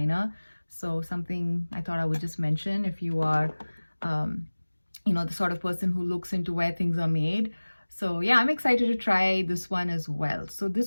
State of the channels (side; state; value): both; inverted; correlation -1.00